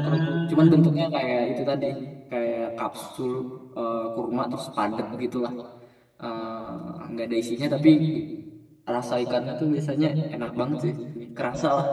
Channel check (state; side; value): identical; both; correlation 1.00